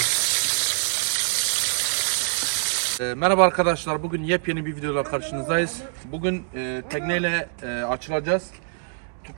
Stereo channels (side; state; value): left; silent; 62 dB below the other